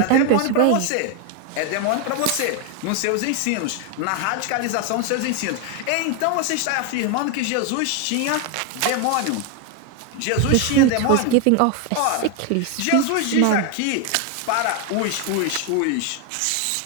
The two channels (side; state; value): both; different; correlation 0.01